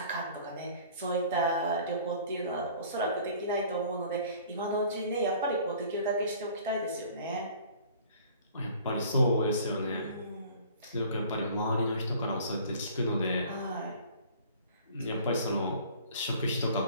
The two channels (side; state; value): both; inverted; correlation -0.49